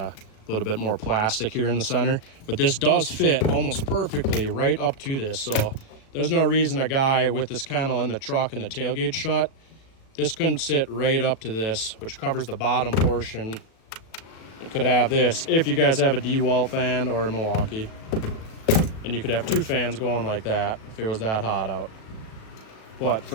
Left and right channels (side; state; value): right; late; 36 ms